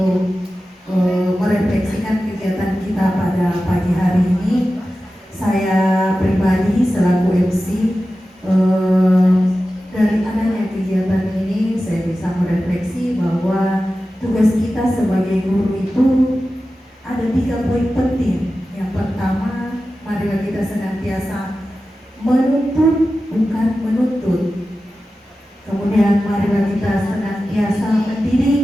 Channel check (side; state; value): both; normal; correlation 0.94